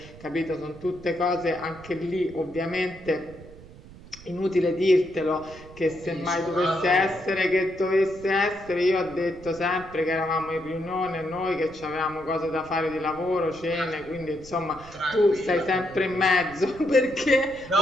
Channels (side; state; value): right; noise; rumble, 19 dB below the sound